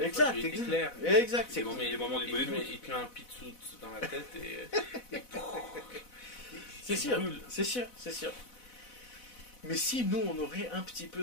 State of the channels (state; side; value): late; right; 4.0 ms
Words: C'est les moments du il te met un pitsout dans la tête et c'est sûr. Mais si nous, on aurait un petit